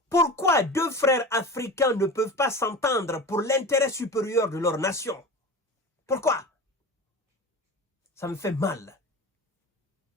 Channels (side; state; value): both; normal; correlation 0.31